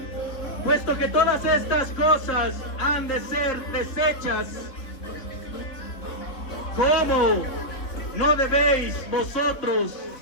Puesto que todas estas cosas han de ser deshechas, ¿cómo no debéis vosotros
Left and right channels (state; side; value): late; right; 3.3 ms